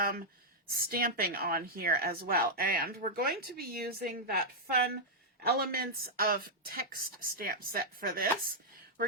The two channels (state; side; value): normal; both; correlation -0.05